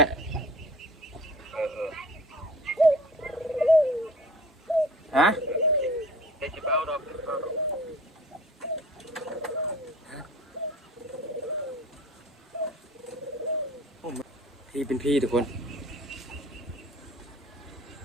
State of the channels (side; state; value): both; normal; correlation 0.45